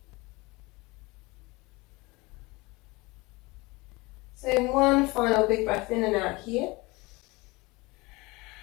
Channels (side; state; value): right; quieter; 23.8 dB